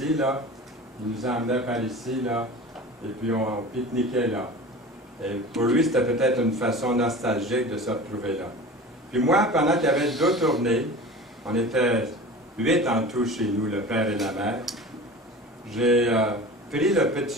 là, il nous emmenait par ici, là, et puis on pique-niquait là. Et pour lui, c'était peut-être une façon nostalgique de se retrouver là. Puis moi, pendant qu'il y avait deux tournées, on était 8 en tout chez nous, le père et la mère, j'ai pris le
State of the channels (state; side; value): normal; both; correlation 0.36